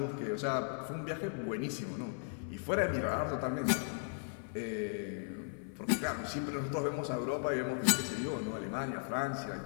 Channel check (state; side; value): silent; right; 53 dB below the other